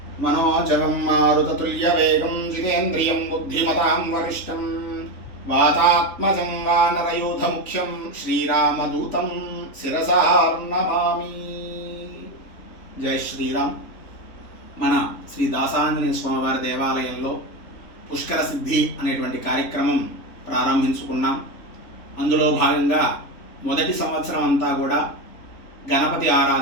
मनोजवं मारुततुल्यवेगं जितेन्द्रियं बुद्धिमतां वरिष्ठं वातात्मजं वानरयूथमुख्यं श्रीरामदूतं शिरसा नमामि। జై శ్రీరామ్. మన శ్రీ దాసాంజనేయ స్వామివారి దేవాలయంలో పుష్కర సిద్ధి అనేటువంటి కార్యక్రమం ప్రారంభించుకున్నాం. అందులో భాగంగా మొదటి సంవత్సరం అంతా కూడా గణపతి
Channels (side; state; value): right; late; 3.5 ms